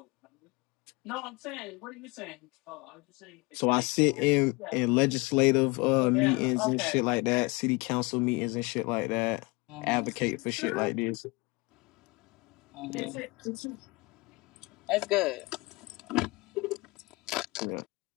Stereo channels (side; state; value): right; quieter; 26.0 dB